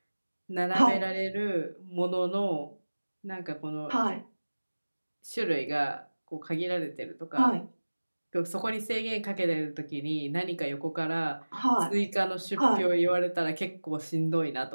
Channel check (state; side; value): inverted; both; correlation -1.00